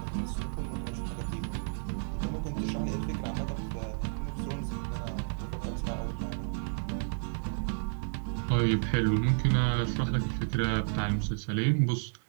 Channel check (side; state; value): left; silent; digital silence